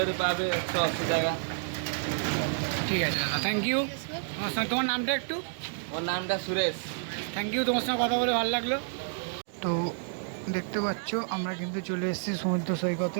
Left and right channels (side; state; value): left; silent; digital silence